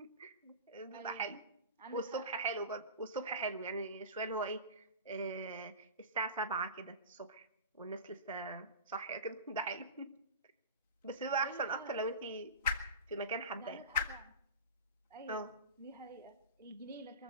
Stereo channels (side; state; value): both; inverted; correlation -0.31